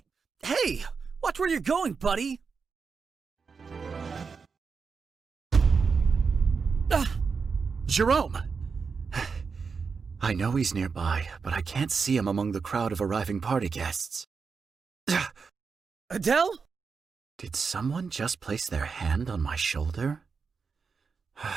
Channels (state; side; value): quieter; left; 5.3 dB